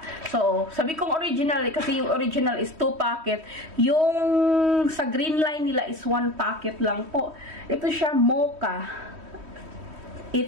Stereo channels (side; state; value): left; late; 3.1 ms